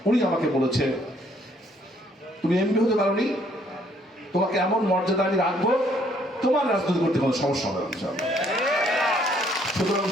উনি আমাকে বলেছে তুমি এমপি হতে পারোনি, তোমাকে এমন মর্যাদা আমি রাখবো, তোমার রাজনীতি করতে কোনো সমস্যা হবে না। সুতরাং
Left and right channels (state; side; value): normal; both; correlation 0.65